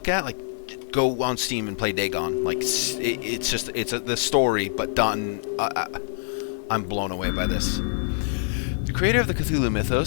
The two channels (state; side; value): silent; right; digital silence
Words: at? Like, go on Steam and play Dagon. Like, it's just, the story, but done. I'm blown away by this. The creator of the Cthulhu